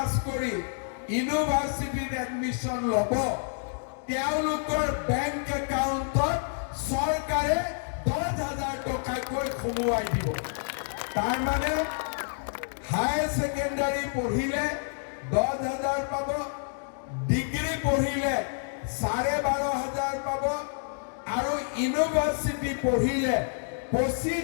কৰি ইউনিভাৰ্চিটিত এডমিশ্যন ল'ব, তেওঁলোকৰ বেংক একাউণ্টত চৰকাৰে 10,000 টকাকৈ সোমোৱাই দিব। তাৰমানে হায়াৰ ছেকেণ্ডাৰী পঢ়িলে 10,000 পাব, ডিগ্ৰী পঢ়িলে 12,500 পাব, আৰু ইউনিভাৰ্চিটি পঢ়িলে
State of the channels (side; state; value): right; silent; digital silence